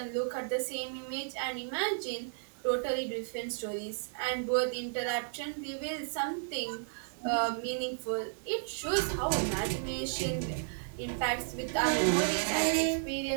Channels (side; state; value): left; silent; digital silence